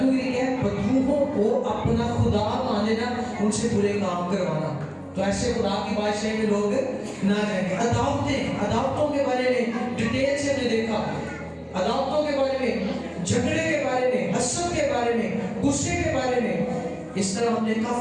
क्या है? बदरूहों को अपना खुदा मान लेना, उनसे बुरे काम करवाना। तो ऐसे खुदा की बादशाही में लोग ना जाएंगे। अदावतों के बारे में डिटेल से हमने देखा, अदावतों के बारे में, झगड़े के बारे में, हसद के बारे में, गुस्से के बारे में, इस तरह हमने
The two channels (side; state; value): both; identical; correlation 1.00